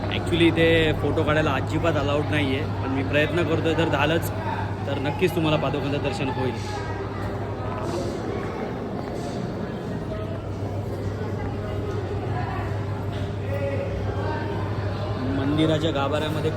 ॲक्च्युली इथे फोटो काढायला अजिबात अलाउड नाही आहे, पण मी प्रयत्न करतो. जर झालंच तर नक्कीच तुम्हाला पादुकांचं दर्शन होईल. मंदिराच्या गाभाऱ्यामध्ये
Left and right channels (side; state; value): both; identical; correlation 1.00